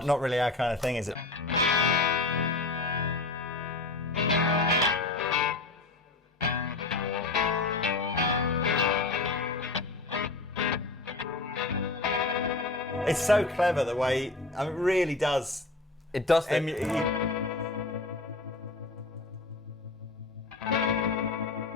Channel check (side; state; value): right; quieter; 3.4 dB